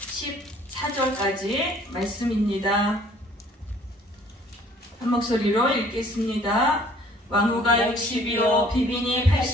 14절까지 말씀입니다. 한 목소리로 읽겠습니다. 왕후가 60이요 비빈이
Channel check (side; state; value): both; normal; correlation 0.56